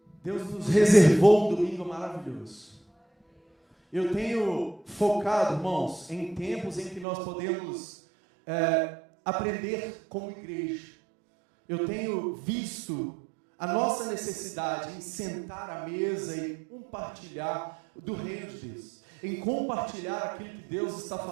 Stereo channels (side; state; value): left; drops out; at 7.1 s